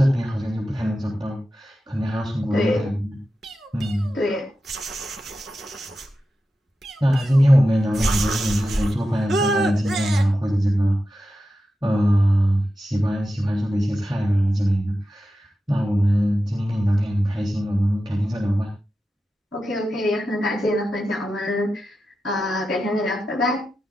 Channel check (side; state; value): both; normal; correlation 0.91